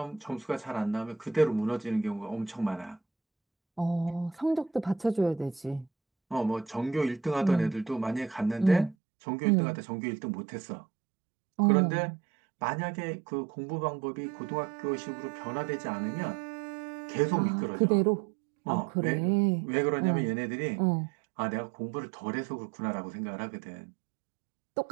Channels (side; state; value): left; drops out; at 9.0 s